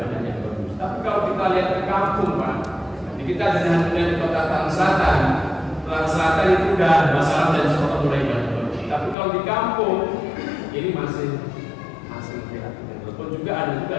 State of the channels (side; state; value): right; drops out; at 9.2 s